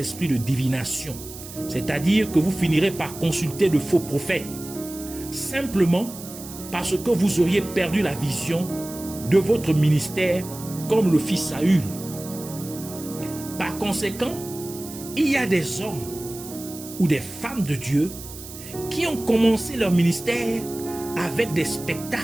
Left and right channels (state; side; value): noise; right; hiss, 14 dB below the sound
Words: de divination. C'est-à-dire que vous finirez par consulter de faux prophètes. Simplement parce que vous auriez perdu la vision de votre ministère comme le fit Saül. Par conséquent, il y a des hommes ou des femmes de Dieu qui ont commencé leur ministère avec des